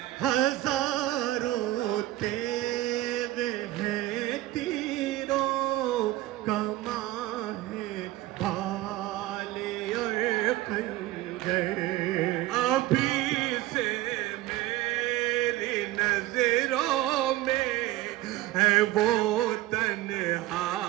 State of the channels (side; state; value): left; quieter; 16.2 dB